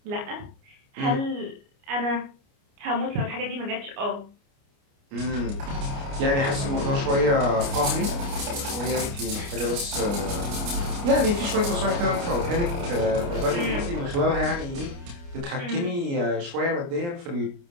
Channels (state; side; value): late; left; 29 ms